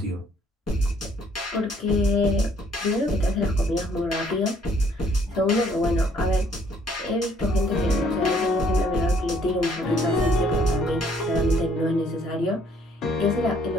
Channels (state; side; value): normal; both; correlation 0.64